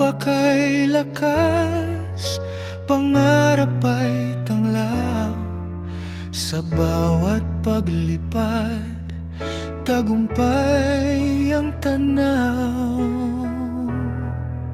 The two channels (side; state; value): both; identical; correlation 1.00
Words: lakas, pangarap ay tanglaw. Sa bawat paglipad, tagumpay ang tanaw.